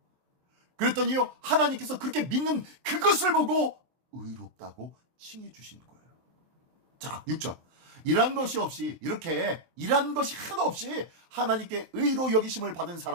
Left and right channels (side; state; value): left; late; 23 ms